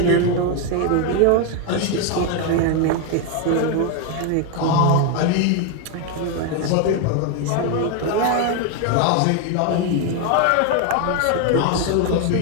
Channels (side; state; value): both; different; correlation 0.01